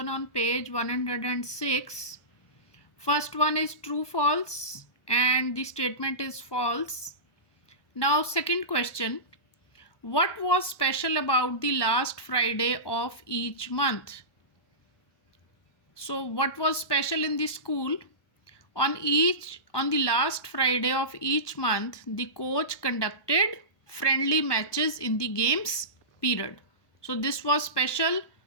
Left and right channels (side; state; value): right; late; 1.2 ms